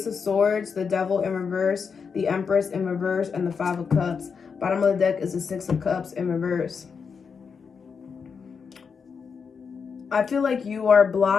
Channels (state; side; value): quieter; right; 5.9 dB